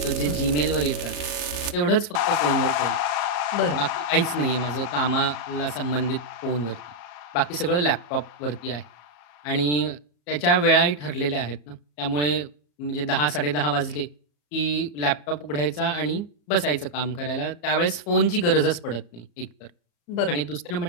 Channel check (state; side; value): late; right; 34 ms